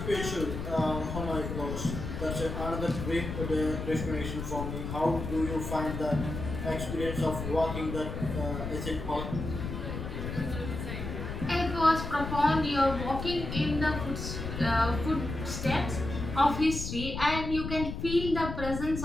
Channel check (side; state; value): left; noise; rumble, 5 dB below the sound